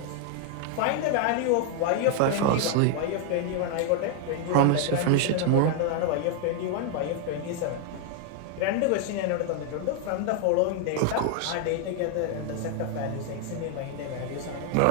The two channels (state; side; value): different; both; correlation 0.00